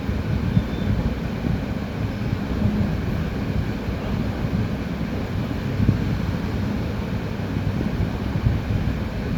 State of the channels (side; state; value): both; identical; correlation 1.00